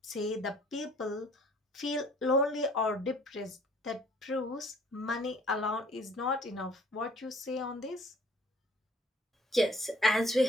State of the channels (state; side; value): normal; both; correlation 0.56